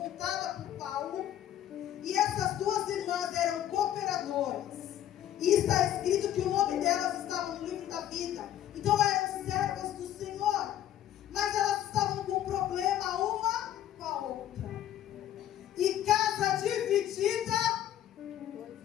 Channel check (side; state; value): right; quieter; 11.6 dB